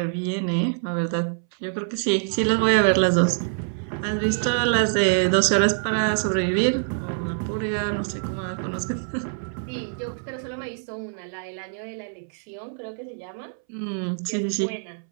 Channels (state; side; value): silent; left; 62 dB below the other